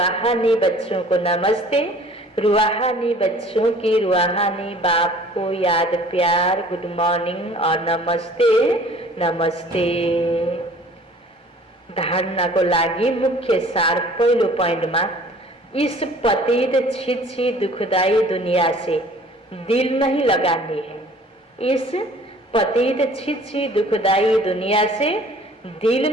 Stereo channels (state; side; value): normal; both; correlation 0.51